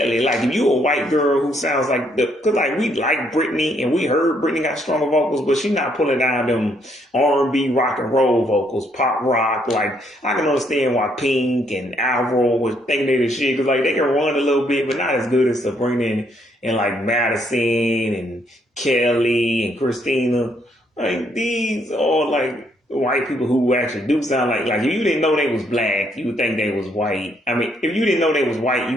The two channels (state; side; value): normal; both; correlation 0.71